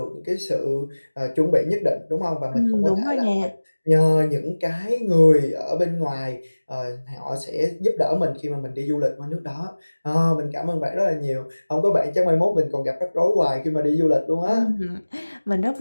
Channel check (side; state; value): both; inverted; correlation -1.00